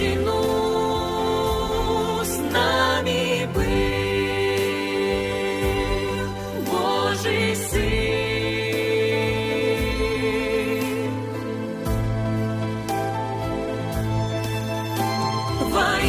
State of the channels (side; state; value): both; identical; correlation 1.00